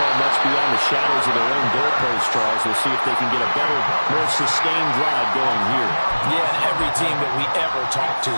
much beyond the shadows of their own goalpost, Charles. We'll see if they can get a better, more sustained drive going here. Yeah, and every team that we ever talk to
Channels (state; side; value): inverted; both; correlation -1.00